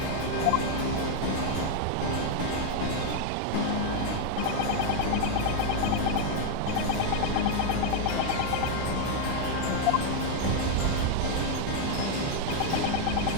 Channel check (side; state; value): both; different; correlation 0.00